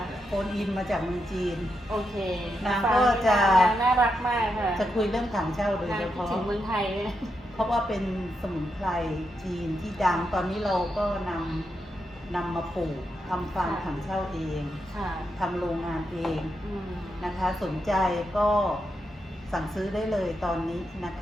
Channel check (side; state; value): both; normal; correlation 0.84